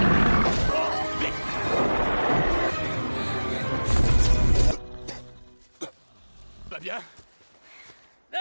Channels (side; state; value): both; inverted; correlation -1.00